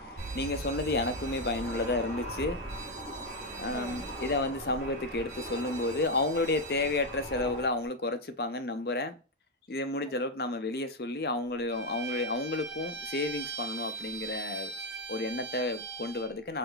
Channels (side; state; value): both; normal; correlation 0.06